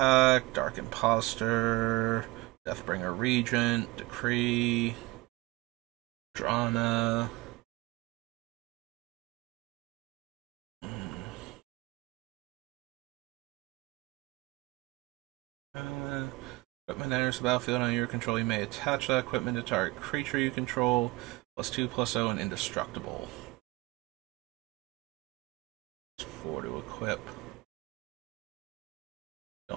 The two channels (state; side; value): quieter; left; 21.6 dB